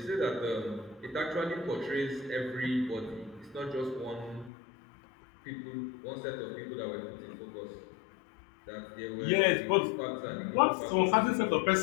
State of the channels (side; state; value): right; drops out; at 4.5 s